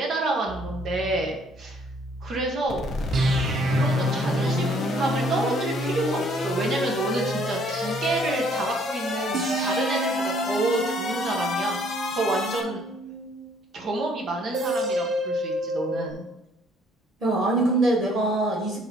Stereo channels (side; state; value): both; normal; correlation 0.62